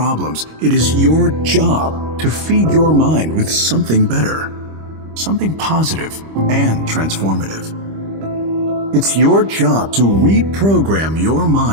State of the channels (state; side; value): late; left; 25 ms